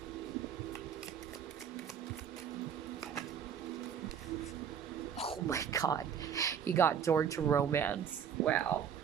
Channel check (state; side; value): quieter; left; 8.1 dB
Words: Oh my God. You got door to romance. Wow.